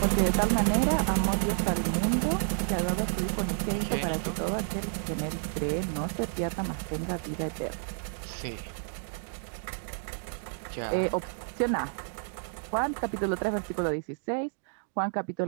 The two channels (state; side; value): silent; left; digital silence